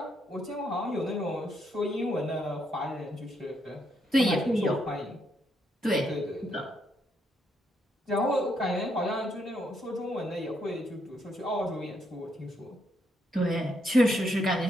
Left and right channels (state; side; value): normal; both; correlation 0.76